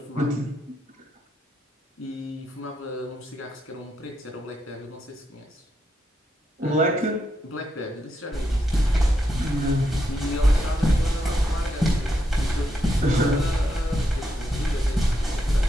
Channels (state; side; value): normal; both; correlation 0.81